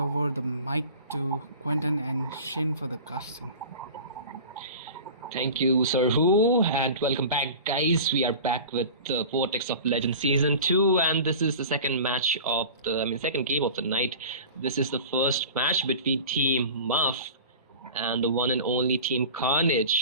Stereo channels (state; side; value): inverted; both; correlation -0.38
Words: over the mic to Quentin and Shin for the casting. Thank you, Sir Who, and welcome back, guys. We are back with the Vortex of Legend Season 2, and this is the second match of second game of the night. This is the first match between Team Muff and the one and only Team